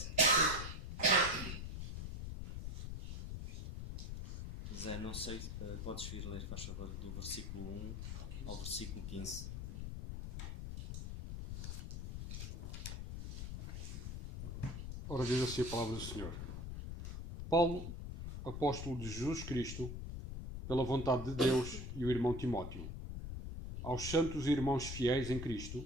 Zé, não sei, podes vir ler, faz favor, do versículo 1 ao versículo 15. Ora, diz assim a palavra do Senhor. Paulo, apóstolo de Jesus Cristo, pela vontade de Deus, e o irmão Timóteo, aos santos e irmãos fiéis em Cristo,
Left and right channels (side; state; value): left; noise; rumble, 6 dB below the sound